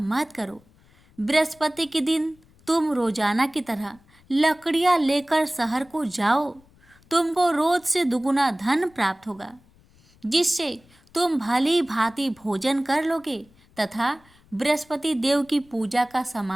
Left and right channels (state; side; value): noise; left; rumble, 30 dB below the sound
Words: करो। बृहस्पति के दिन तुम रोजाना की तरह लकड़ियां लेकर शहर को जाओ। तुमको रोज से दुगुना धन प्राप्त होगा जिससे तुम भली भांति भोजन कर लोगे तथा बृहस्पति देव की पूजा का